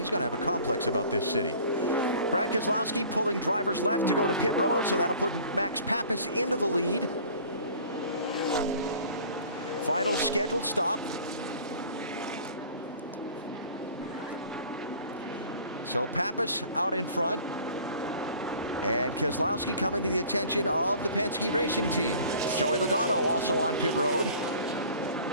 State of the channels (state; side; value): inverted; both; correlation -0.47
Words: a complex about this city. Brad Keselowski pulling drivers left to go to pit road, so that'll put Max Pappas into the lead. Final scheduled stop. So Pappas out in front. And Keselowski coming to the attention of the Penske Racing Team. Joey Logano also on pit road.